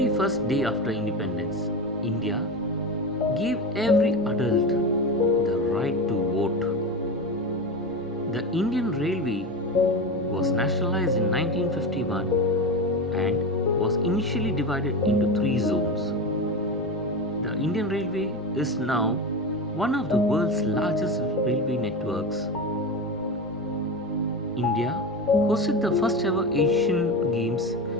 first day after independence, India gave every adult the right to vote. The Indian Railway was nationalized in 1951 and was initially divided into three zones. The Indian Railway is now one of the world's largest railway networks. India hosted the first ever Asian Games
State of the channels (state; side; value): noise; left; rumble, 30 dB below the sound